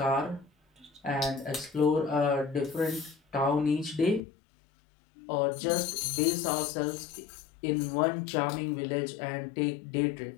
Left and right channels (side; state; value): right; drops out; at 4.2 s